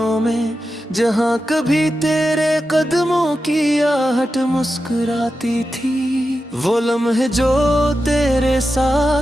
में, जहाँ कभी तेरे कदमों की आहट मुस्कुराती थी। वो लम्हे जो तेरे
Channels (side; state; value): both; normal; correlation 0.90